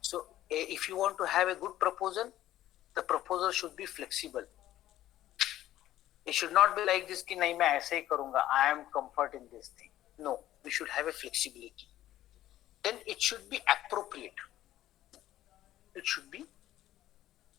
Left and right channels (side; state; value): right; quieter; 13.7 dB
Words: So if you want to have a good proposal, the proposal should be flexible. It should not be like this कि नहीं मैं ऐसे ही करूँगा. I am comfort in this thing. No, we should have a flexibility. Then it should be appropriate. It should be.